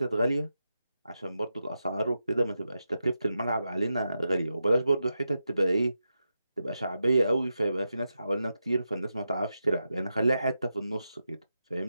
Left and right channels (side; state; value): both; inverted; correlation -0.88